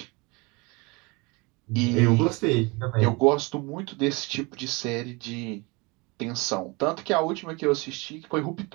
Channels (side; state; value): left; quieter; 26.9 dB